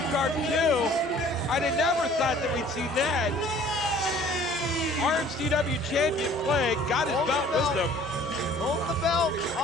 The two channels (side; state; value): both; normal; correlation 0.52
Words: garb too. I'd have never thought that we'd see that. RMCW champion Plague got his belt with him. Hold the belt.